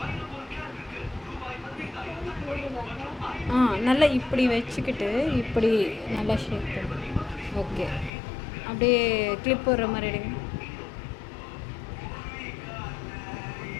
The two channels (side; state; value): right; drops out; at 8.1 s